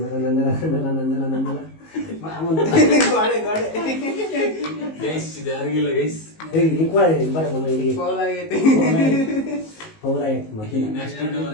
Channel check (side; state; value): right; late; 19 ms